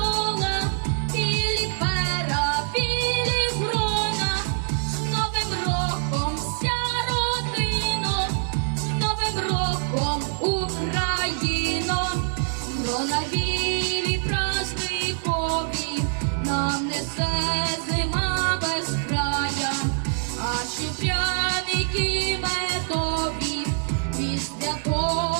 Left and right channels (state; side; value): silent; left; 62 dB below the other